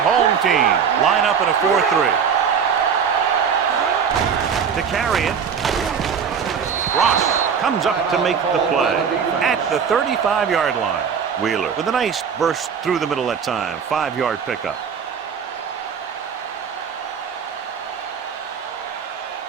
home team line up in a 4-3. To carry it. Ross comes up to make the play at the 35-yard line. Wheeler with a nice burst through the middle that time. 5-yard pickup.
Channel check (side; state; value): left; quieter; 6.9 dB